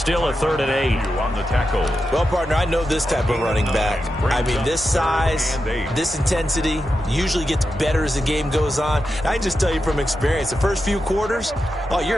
a 3rd and 8. On the tackle. Well, partner, I know this type of running back. I mean, this size, this intensity usually gets better as the game goes on. I can just tell you from experience, the first few quarters, oh,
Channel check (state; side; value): normal; both; correlation 0.89